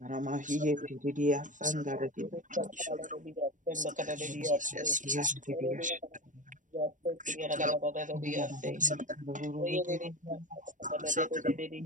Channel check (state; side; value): late; left; 0.37 ms